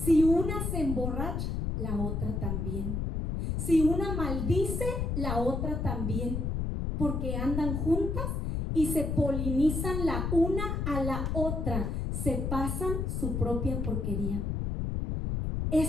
una se emborracha, la otra también. Si una maldice, la otra también. Porque andan juntas y se polinizan la una a la otra. Se pasan su propia porquería.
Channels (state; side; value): noise; left; rumble, 1 dB below the sound